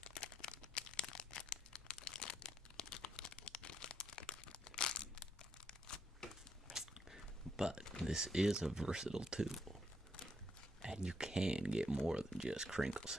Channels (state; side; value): normal; both; correlation 0.75